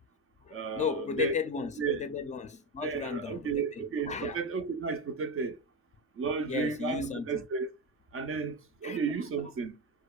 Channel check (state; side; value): normal; both; correlation 0.17